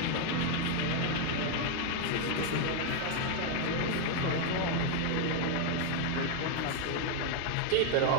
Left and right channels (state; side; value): different; both; correlation 0.00